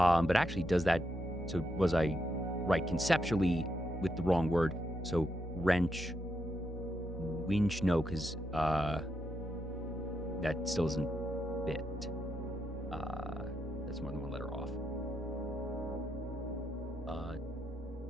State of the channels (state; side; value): normal; both; correlation 0.82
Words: actually does that, so was I right conceptually with the wrong word? So wrench, winch, no, because that still isn't fit. That's more than one letter off.